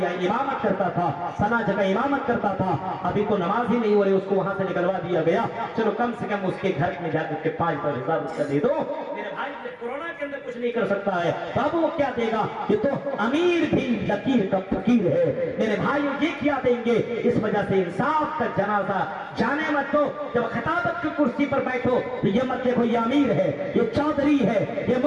یہاں امامت کرتا تھا، سنا جگہ امامت کرتا تھا، ابھی تو نماز ہی نہیں ہو رہی، اس کو وہاں سے نکلوا دیا گیا، چلو کم سے کم اس کے گھر میں جا کر کے 5,000 روپیہ دے دو۔ میرے بھائی کورونا کے اندر کچھ نہیں کر سکتا ہے، بابو وہ کیا دے گا؟ یہ تو امیر بھی لکیر کا فقیر ہے۔ میرے بھائی یہ کیا دیں گے؟ اس وجہ سے انصاف کا جنازہ جانے مت دو۔ جب خطابت کی کرسی پر بیٹھو تو یہ مت دیکھو یہ امیر ہے، یہ چودھری ہے، یہ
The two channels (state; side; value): identical; both; correlation 1.00